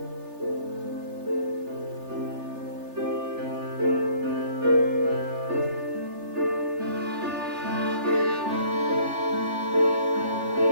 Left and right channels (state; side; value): late; left; 3.4 ms